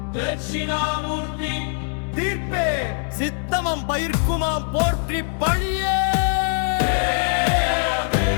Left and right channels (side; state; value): right; silent; 64 dB below the other